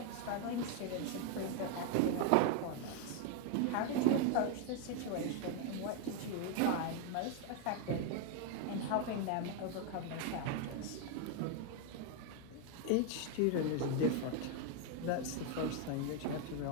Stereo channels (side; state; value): both; different; correlation 0.01